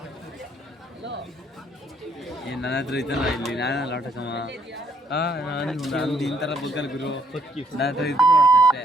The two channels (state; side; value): normal; both; correlation 0.68